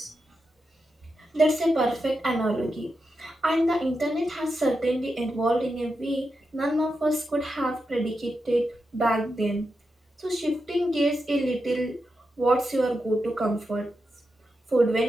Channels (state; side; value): normal; both; correlation 0.88